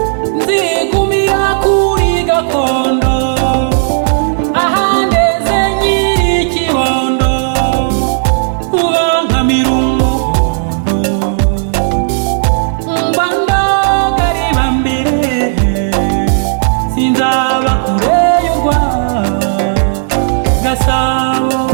nzigumira kuri gakondo ahandeze nyirikibondo ubankamira umuhondo mbandagariba mbere sinzaba kure y'urwa Gasabo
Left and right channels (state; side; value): silent; left; digital silence